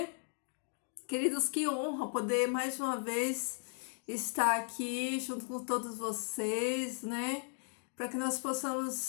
Queridos, que honra poder mais uma vez estar aqui junto com todos vocês, né? Para que nós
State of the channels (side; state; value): right; silent; 54 dB below the other